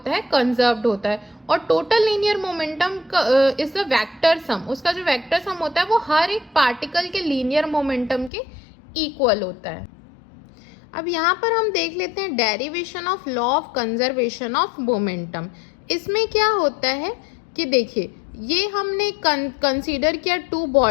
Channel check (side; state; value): right; drops out; at 8.3 s